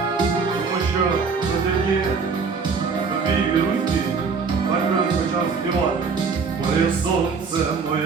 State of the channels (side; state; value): left; quieter; 5.1 dB